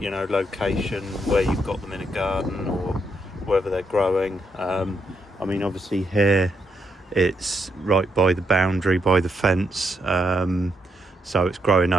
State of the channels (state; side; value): normal; both; correlation 0.78